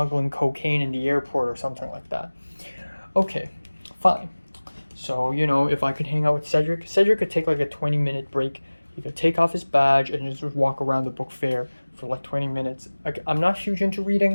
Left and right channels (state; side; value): inverted; both; correlation -1.00